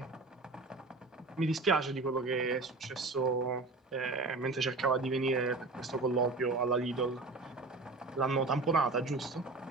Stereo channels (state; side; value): quieter; left; 3.5 dB